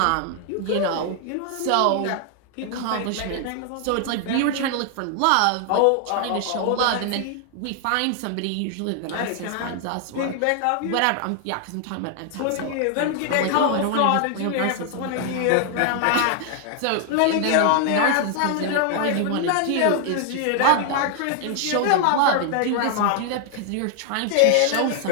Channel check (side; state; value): both; different; correlation 0.00